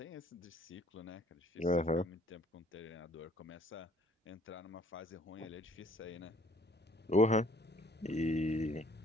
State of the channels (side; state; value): both; normal; correlation 0.59